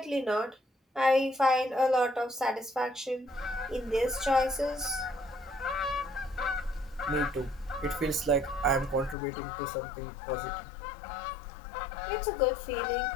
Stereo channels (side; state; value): right; drops out; at 9.2 s